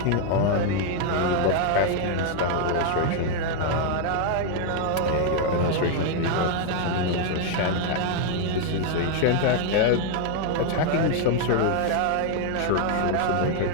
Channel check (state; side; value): different; both; correlation 0.00